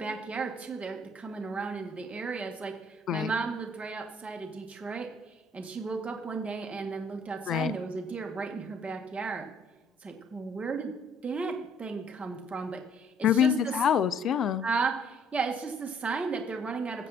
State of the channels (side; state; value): both; normal; correlation 0.61